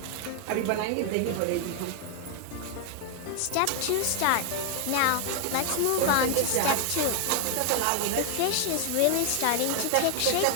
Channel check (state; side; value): different; both; correlation 0.00